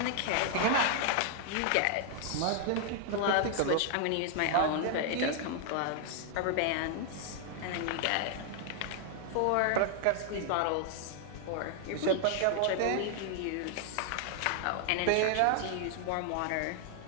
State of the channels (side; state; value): both; different; correlation 0.00